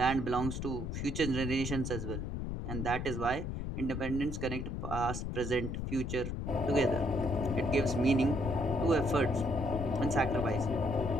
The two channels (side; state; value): left; noise; rumble, 4 dB below the sound